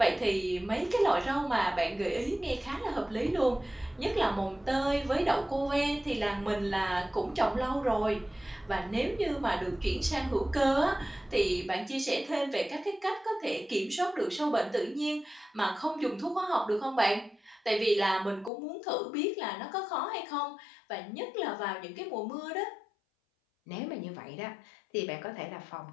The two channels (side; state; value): right; drops out; at 18.5 s